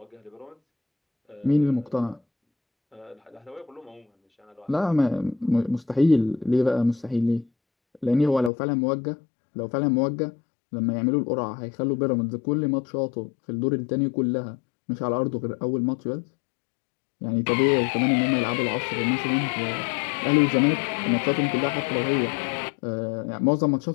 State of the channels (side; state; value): right; drops out; at 8.5 s